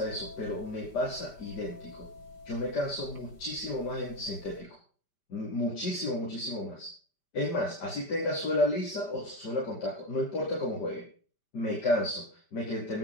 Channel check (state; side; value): late; right; 5.1 ms